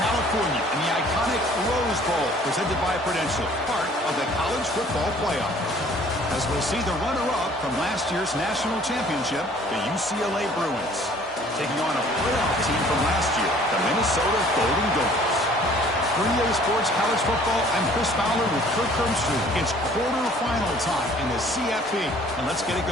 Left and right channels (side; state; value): both; normal; correlation 0.55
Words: and the iconic Rose Bowl, presented by Prudential, part of the college football playoff. As we'll see the runner-up from last year's national championship, the UCLA Bruins, taking on a playoff team from last year, the Minnesota Golden Gophers. For EA Sports College Football, I'm Chris Fowler with Kirk Hermstreet. It's quarterfinal time in the CFP, and let's get it